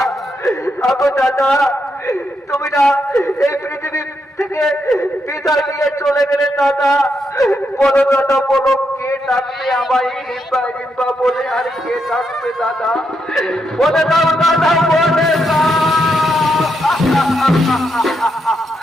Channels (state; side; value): normal; both; correlation 0.81